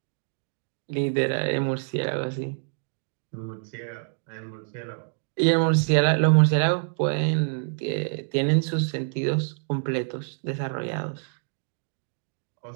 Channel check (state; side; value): silent; left; digital silence